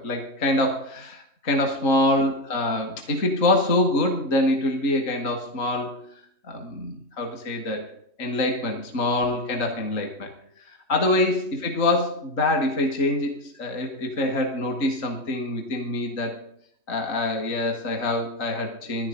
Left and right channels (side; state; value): right; late; 3.1 ms